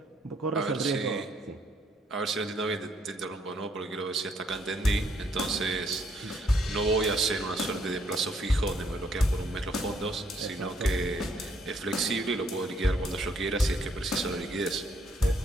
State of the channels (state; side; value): normal; both; correlation 0.69